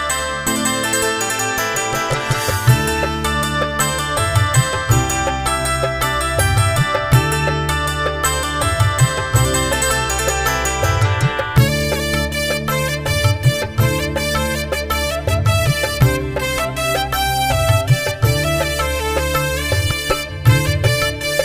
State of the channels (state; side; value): identical; both; correlation 1.00